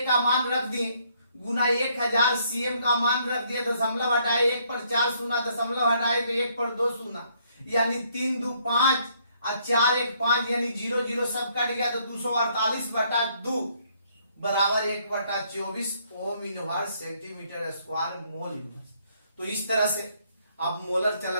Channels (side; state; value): both; inverted; correlation -0.68